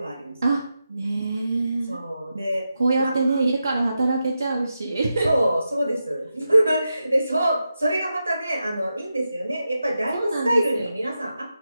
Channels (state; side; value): inverted; both; correlation -0.89